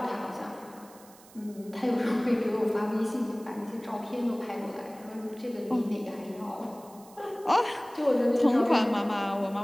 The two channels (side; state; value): right; noise; hiss, 24 dB below the sound